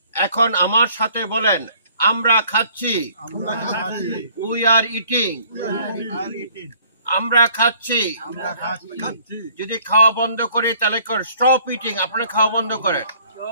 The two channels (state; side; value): inverted; both; correlation -0.58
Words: এখন আমার সাথে বলেন, আমরা খাচ্ছি। We are eating. আমরা খাচ্ছি। যদি খাওয়া বন্ধ করি তাহলে স্টপ ইটিং, আপনারা খাওয়া বন্ধ করেন।